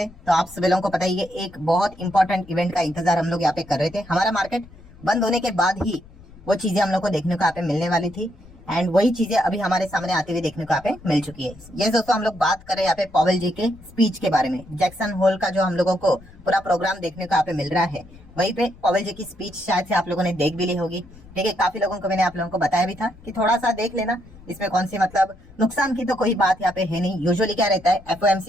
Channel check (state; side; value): noise; left; rumble, 22 dB below the sound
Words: तो आप सभी लोगों को पता ही है, एक बहुत इंपॉर्टेंट इवेंट का इंतजार हम लोग यहाँ पे कर रहे थे। हमारा मार्केट बंद होने के बाद ही वो चीजें हम लोग को देखने को यहाँ पे मिलने वाली थी एंड वही चीजें अभी हमारे सामने आती हुई देखने को यहाँ पे मिल चुकी है। ये दोस्तों हम लोग बात कर रहे हैं यहाँ पे पॉवेल जी के स्पीच के बारे में। जैक्सन होल का जो हम लोगों को पूरा प्रोग्राम देखने को यहाँ पे मिल रहा है, वहीं पे पॉवेल जी की स्पीच शायद से आप लोगों ने देख भी ली होगी। ठीक है, काफी लोगों को मैंने आप लोगों को बताया भी था कि थोड़ा सा देख लेना, इसमें कौन सी मतलब नुकसान की तो कोई बात यहाँ पे है नहीं। यूजुअली क्या रहता है,